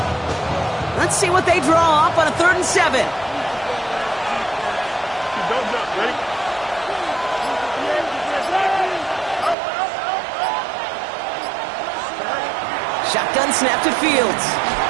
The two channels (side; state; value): left; drops out; at 9.6 s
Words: Let's see what they draw up on a 3rd and 7. Shotgun snap to Fields.